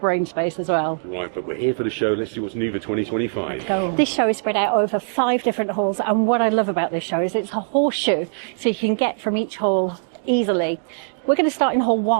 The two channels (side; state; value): left; silent; digital silence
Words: brain space as well. Right, but we're here for the show. Let's see what's new for 2025. This show is spread out over 5 different halls. And what I love about this show is it's a horseshoe. So you can get from each hall easily. We're going to start in hall